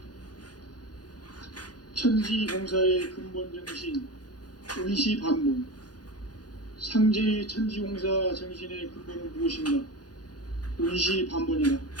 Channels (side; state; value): right; late; 0.69 ms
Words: 천지공사의 근본 정신 운시반문. 상제의 천지공사 정신의 근본은 무엇인가? 운시반문이다.